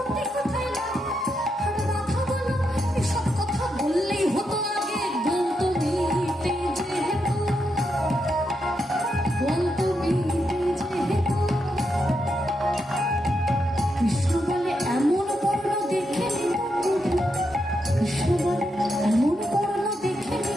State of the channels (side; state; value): both; normal; correlation 0.83